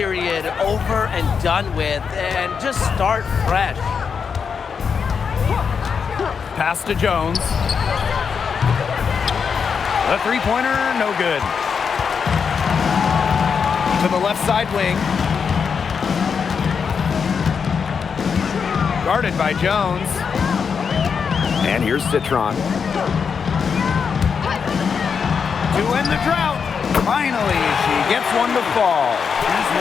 over and done with and just start fresh. Pass to Jones. The 3-pointer, no good. to the left side wing. Guarded by Jones. And here's Citron. To end the drought. Finally, she gets one to fall. She's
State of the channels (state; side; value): quieter; right; 6.2 dB